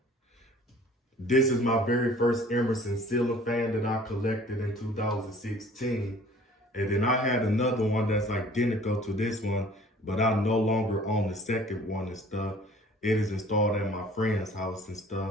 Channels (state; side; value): normal; both; correlation 0.51